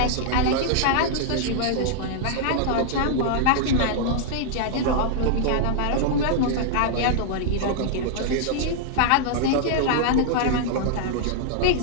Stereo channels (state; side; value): different; both; correlation -0.01